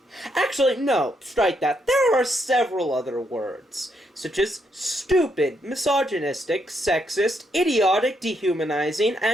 Actually, no, strike that. There are several other words, such as stupid, misogynistic, sexist, idiotic, dehumanizing,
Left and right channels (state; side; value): normal; both; correlation 0.77